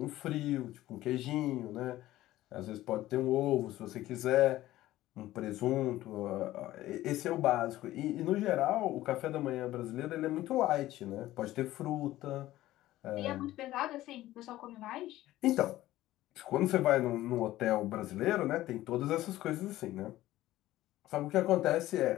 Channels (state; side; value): quieter; right; 15.5 dB